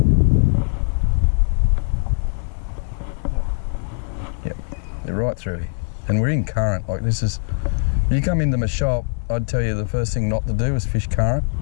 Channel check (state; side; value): silent; right; digital silence